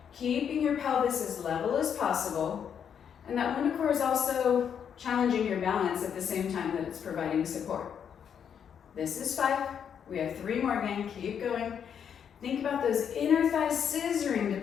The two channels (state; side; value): quieter; right; 8.0 dB